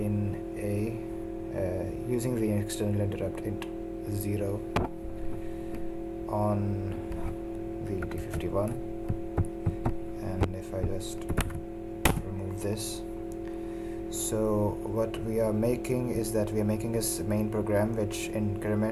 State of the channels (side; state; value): both; identical; correlation 1.00